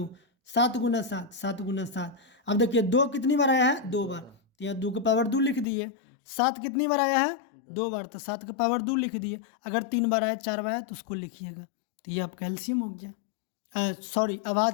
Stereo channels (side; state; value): right; drops out; at 5.7 s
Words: 7 गुना 7, 7 गुना 7। अब देखिए 2 कितनी बार आया है? 2 बार, तो यहाँ 2 का पावर 2 लिख दिए। 7 कितनी बार आया है? 2 बार, तो 7 का पावर 2 लिख दिए। अगर 3 बार आया, 4 बार आया तो उसको लिखिएगा। तो ये आपका एलसीएम हो गया, सॉरी